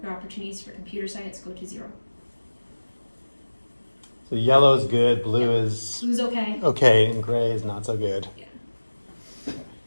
your opportunities for computer science go to 0. So yellow is good, blue is Blue's okay. okay, and gray is not so good. Yeah.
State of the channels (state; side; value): inverted; both; correlation -1.00